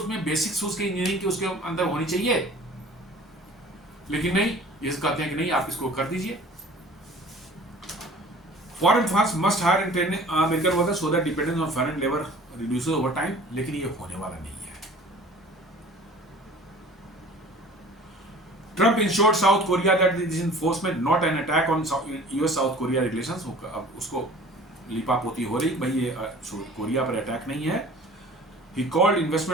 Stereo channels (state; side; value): normal; both; correlation 0.46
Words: बेसिक्स उसके इंजीनियरिंग की उसके अंदर होनी चाहिए। लेकिन नहीं, ये कहते हैं कि नहीं, आप इसको कर दीजिए। Foreign firms must hire and train American workers so that dependence on foreign labor reduces over time। लेकिन ये होने वाला नहीं है। Trump assured South Korea that this enforcement not an attack on US-South Korea relations। अब उसको लिपापोती हो रही, भाई ये कोरिया पर अटैक नहीं है। He called